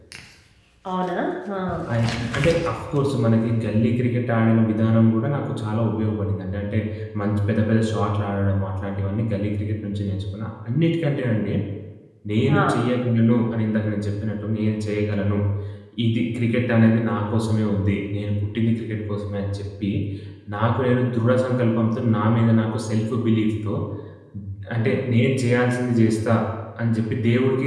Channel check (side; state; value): both; identical; correlation 1.00